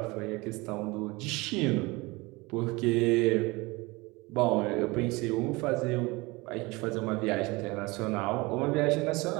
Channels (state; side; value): quieter; left; 23.8 dB